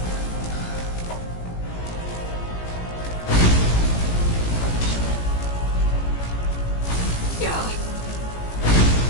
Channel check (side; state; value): right; late; 18 ms